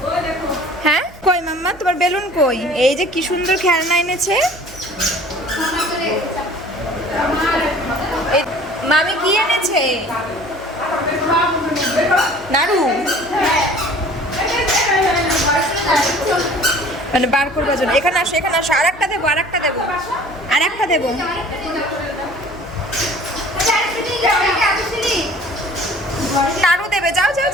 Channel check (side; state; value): right; noise; hum, 22 dB below the sound